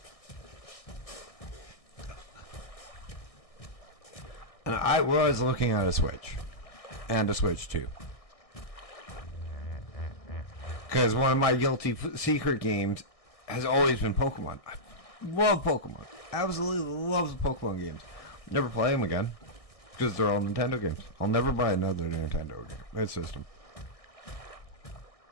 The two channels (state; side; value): late; right; 1.6 ms